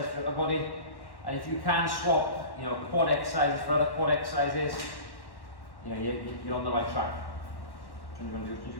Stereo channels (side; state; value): right; late; 1.1 ms